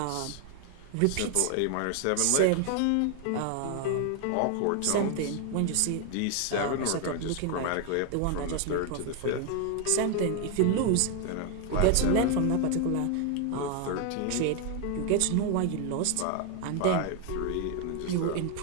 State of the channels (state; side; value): different; both; correlation 0.01